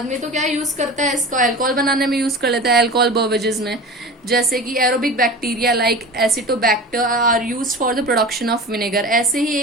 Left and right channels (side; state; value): both; normal; correlation 0.33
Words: तो क्या यूज करता है, इसको अल्कोहल बनाने में यूज कर लेता है, अल्कोहल बेवरेजेस में, जैसे कि aerobic bacteria like acetobacter are used for the production of vinegar. ऐसे ही